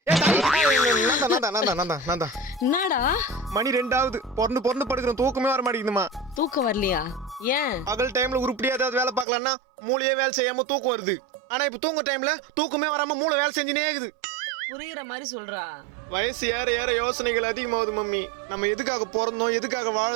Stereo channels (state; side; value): drops out; left; at 9.2 s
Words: என்னடா மணி 2 பொறந்து படுக்கிறோம், தூக்கமே வர மாட்டேங்குதுமா. தூக்கம் வரலையா? ஏன்? பகல் டைம்ல உருப்படியா ஏதாவது வேலை பார்க்கலாம்னா மூளையே வேலை செய்யாம தூக்கம் வருது. ஆனா இப்ப தூங்க டைம்ல தூக்கமே வராம மூளை வேலை செஞ்சுனே இருக்குது. புரியுற மாதிரி சொல்றா. வயசு ஏற ஏற யோசனைகள் அதிகமாகுது மம்மி. நம்ம எதுக்காக பிறந்தோம், எதுக்காக